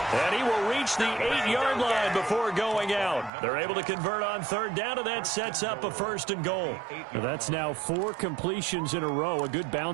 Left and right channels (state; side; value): drops out; left; at 3.3 s